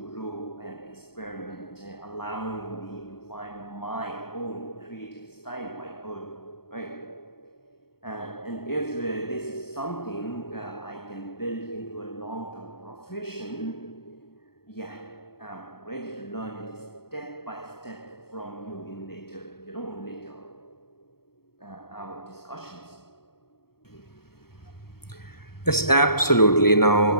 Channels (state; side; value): late; right; 0.95 ms